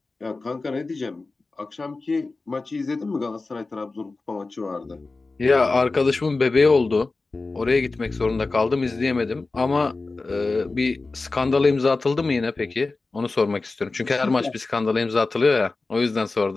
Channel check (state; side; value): quieter; right; 3.6 dB